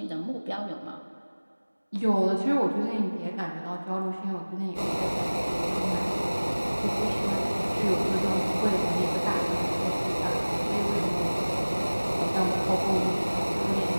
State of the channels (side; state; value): both; inverted; correlation -1.00